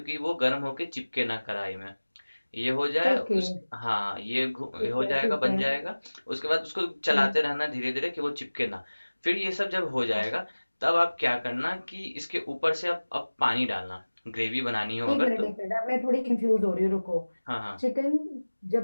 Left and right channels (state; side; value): inverted; both; correlation -1.00